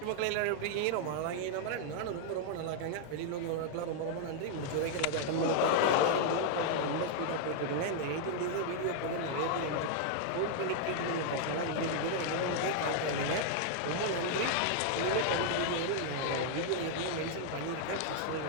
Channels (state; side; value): different; both; correlation -0.01